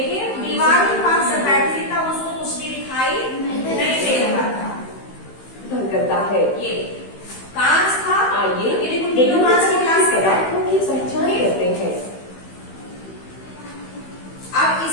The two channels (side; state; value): right; late; 15 ms